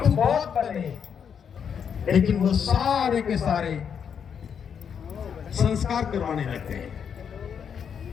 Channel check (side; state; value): right; quieter; 7.4 dB